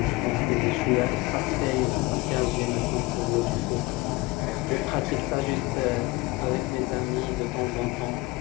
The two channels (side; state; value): right; quieter; 21.4 dB